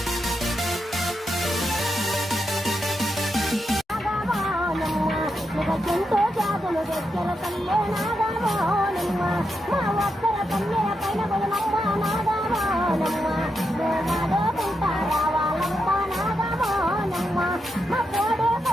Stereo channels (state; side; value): normal; both; correlation 0.85